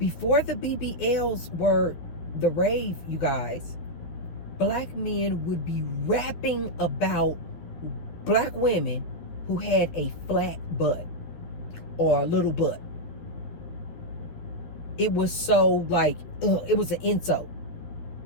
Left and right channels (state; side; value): late; right; 12 ms